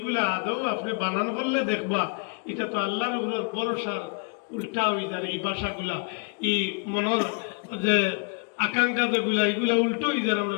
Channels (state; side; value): quieter; right; 33.3 dB